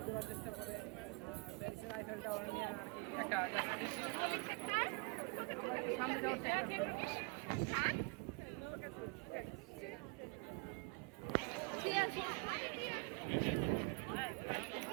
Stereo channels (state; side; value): quieter; left; 31.4 dB